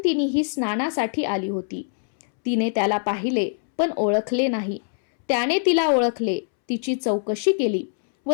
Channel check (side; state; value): right; silent; 63 dB below the other